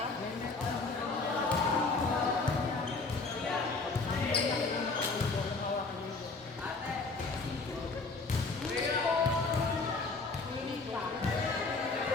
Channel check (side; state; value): right; quieter; 3.8 dB